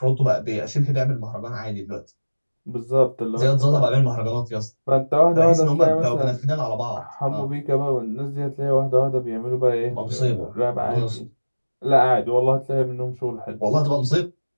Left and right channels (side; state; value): both; inverted; correlation -1.00